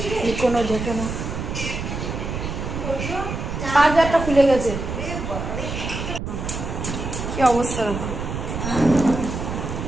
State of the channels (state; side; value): noise; right; rumble, 5 dB below the sound